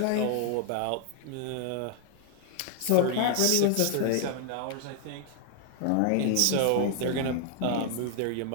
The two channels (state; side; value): different; both; correlation 0.00